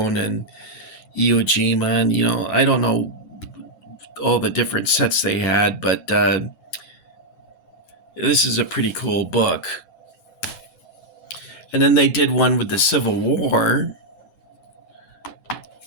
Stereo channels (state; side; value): late; right; 9.3 ms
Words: and Iwo Jima, and I don't know all the different sets they had, but this is a pretty cool book. And then they did one with the Civil War,